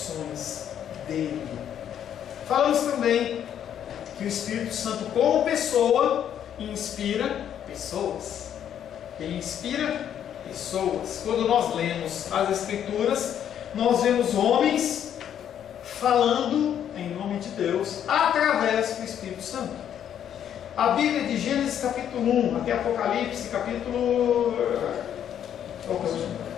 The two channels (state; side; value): quieter; right; 9.6 dB